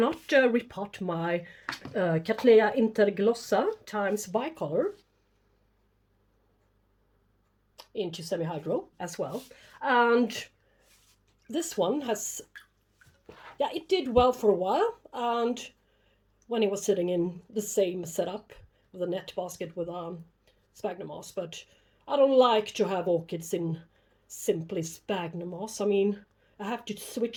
repot my Cattleya Interglossa times Bicolor into semi-hydro as well. And this one has, yeah, it did well for a while. And when it was sitting in the same setup with a net basket with sphagnum moss, but I don't like to have orchids in simply sphagnum moss. I mean, I have to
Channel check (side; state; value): both; identical; correlation 1.00